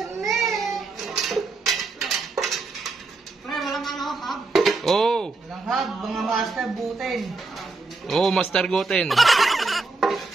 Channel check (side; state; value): left; quieter; 3.7 dB